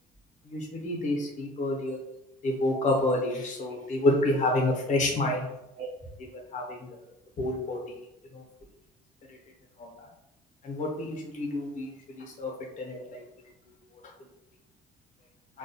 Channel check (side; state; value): both; normal; correlation 0.46